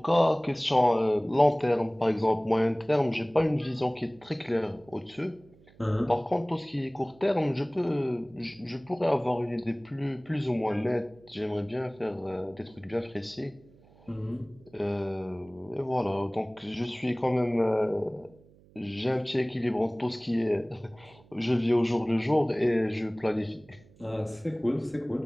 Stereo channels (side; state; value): right; noise; hum, 27 dB below the sound